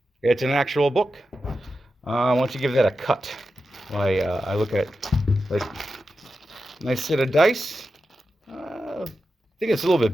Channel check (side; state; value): both; normal; correlation 0.90